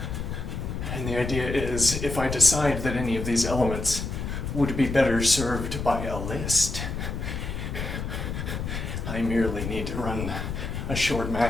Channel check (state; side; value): noise; left; rumble, 4 dB below the sound